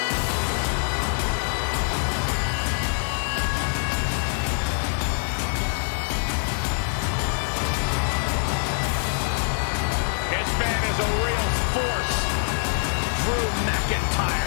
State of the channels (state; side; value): silent; right; digital silence